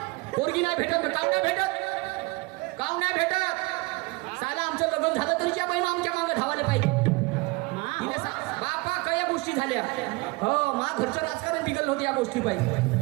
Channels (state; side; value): quieter; left; 25.0 dB